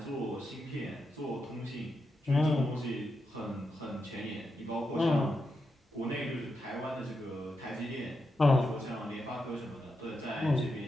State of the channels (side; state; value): both; normal; correlation 0.85